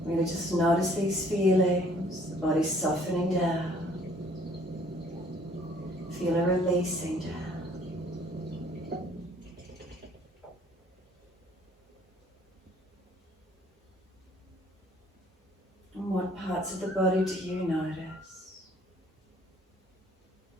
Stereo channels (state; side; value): normal; both; correlation 0.59